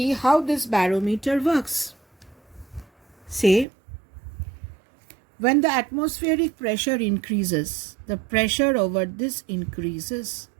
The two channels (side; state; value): left; drops out; at 3.7 s